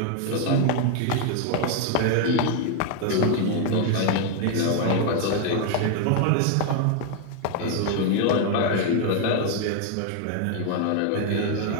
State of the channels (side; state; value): both; different; correlation 0.01